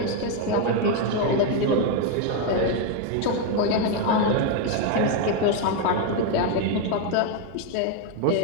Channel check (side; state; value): both; different; correlation 0.01